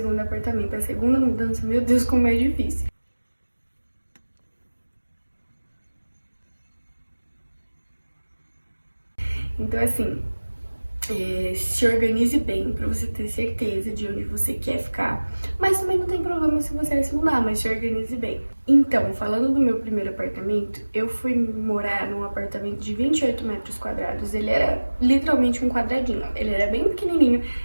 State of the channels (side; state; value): both; inverted; correlation -1.00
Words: apartamento. A segunda mudança, meu Deus, como é difícil. Então assim, se organize bem pra você ter certeza de onde você quer ficar. Mas também não tem problema se você se mudar, mas se organize bem. Então, falando do meu primeiro apartamento, eu fui morar num apartamento de 28 metros quadrados. Ele era literalmente um quadradinho. Ele era bem pequenininho,